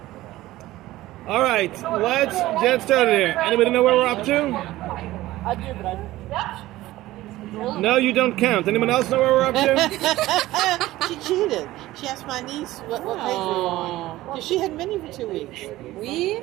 All right. Let's get started here. Anybody know where we're up to? No, you don't count. Anyone else know where we're up to? She cheated. She asked my niece what page we were on. Because she had many for 2 weeks. We're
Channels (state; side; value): quieter; left; 16.6 dB